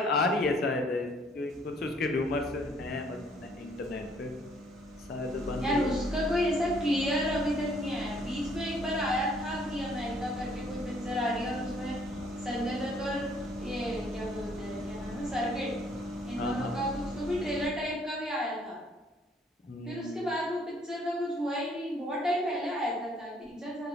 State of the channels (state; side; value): normal; both; correlation 0.63